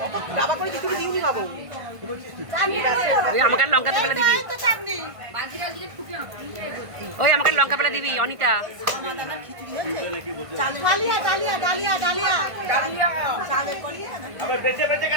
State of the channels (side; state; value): left; late; 1.5 ms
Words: ডাবা করে কিছু দিইনি বাবু। ওই আমাকে আর লঙ্কা পেলে দিবি, ওই আমাকে আর লঙ্কা পেলে দিবি Anita. Dahlia dahlia dahlia dahlia dahlia চালের কলিয়া আবার বেঁচে বেঁচে